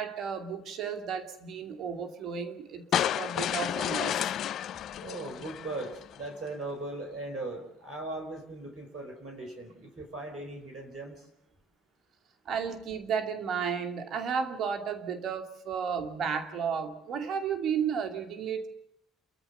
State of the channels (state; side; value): normal; both; correlation 0.51